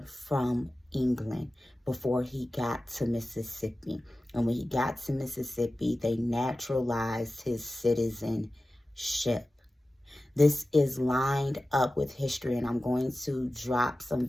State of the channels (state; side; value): normal; both; correlation 0.95